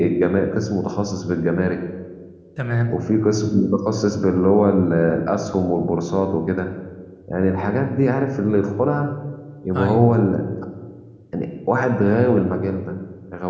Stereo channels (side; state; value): both; identical; correlation 1.00